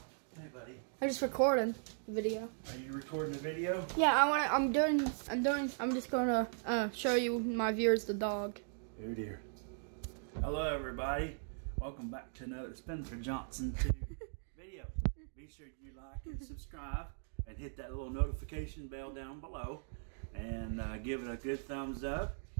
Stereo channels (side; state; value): left; silent; digital silence